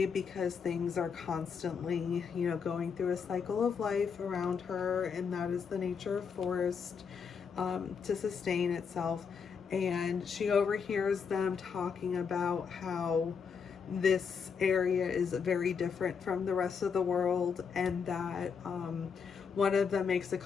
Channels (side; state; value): right; quieter; 6.3 dB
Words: because things are constantly, you know, going through a cycle of life around her, and that is the nature of forest, to sustain itself. And she overhears them talking about how this area is very different from the rest of the world, and that one of them makes a